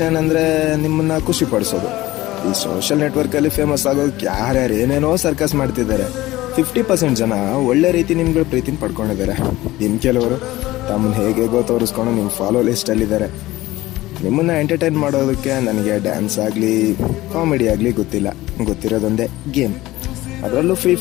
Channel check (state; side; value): quieter; right; 17.4 dB